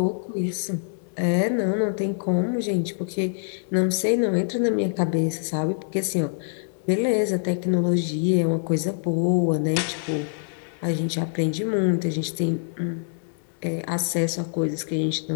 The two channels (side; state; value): right; silent; digital silence